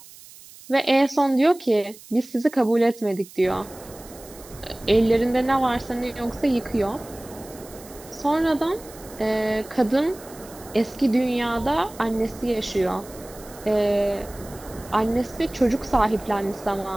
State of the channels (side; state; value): right; noise; hiss, 20 dB below the sound